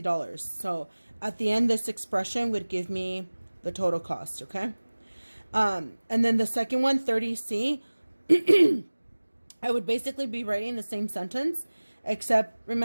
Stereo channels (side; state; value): both; inverted; correlation -1.00